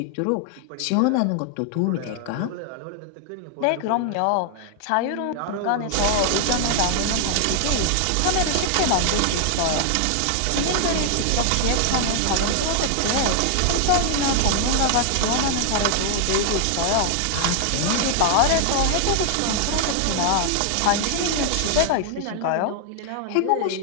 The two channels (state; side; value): different; both; correlation 0.00